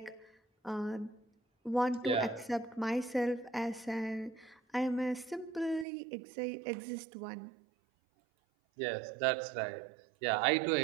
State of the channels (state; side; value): drops out; left; at 5.9 s